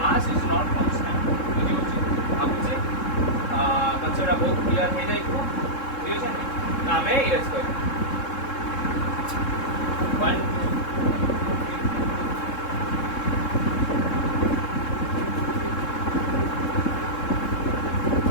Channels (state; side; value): late; right; 3.7 ms